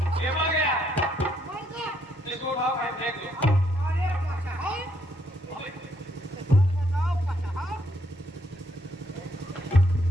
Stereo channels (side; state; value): both; normal; correlation 0.72